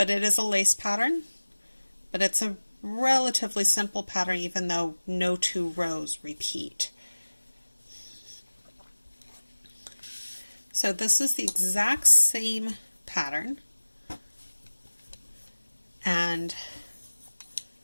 it is a lace pattern, but it's a relatively simple pattern even though no two rows repeat. So this is the exact same pattern,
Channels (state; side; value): inverted; both; correlation -1.00